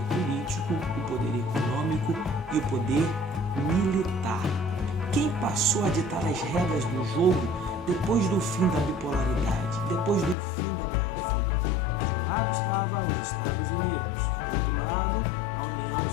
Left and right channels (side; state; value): right; drops out; at 10.4 s